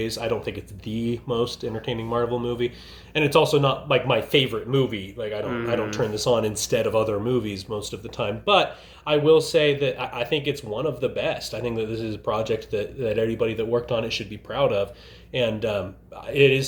I don't think it's the most entertaining Marvel movie, and it's also not like my favorite movie. Like I don't turn this on instead of other movies most of the time. But I will say that I think it's one of the best. I think that this is a project that everybody that worked on it should be proud of, and it is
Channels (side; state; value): both; identical; correlation 1.00